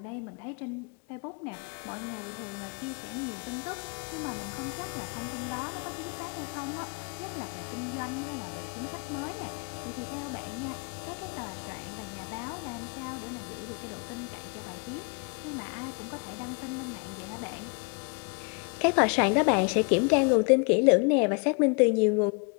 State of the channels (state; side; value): quieter; right; 35.8 dB